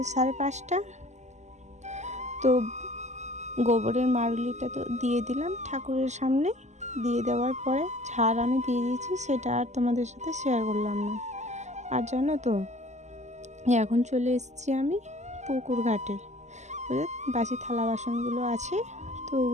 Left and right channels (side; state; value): left; late; 0.33 ms